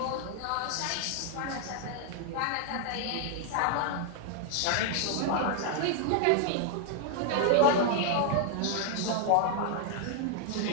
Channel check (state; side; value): different; both; correlation 0.00